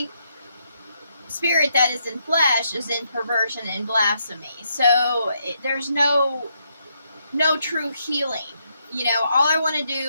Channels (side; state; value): both; inverted; correlation -0.77